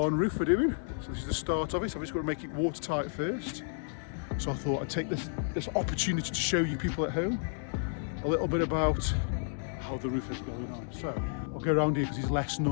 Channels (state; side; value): silent; right; digital silence